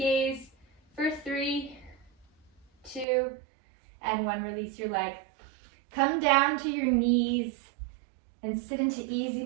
for 3, 2, and 1. Release your leg. Come down to your knees and sit into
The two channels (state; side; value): drops out; left; at 3.1 s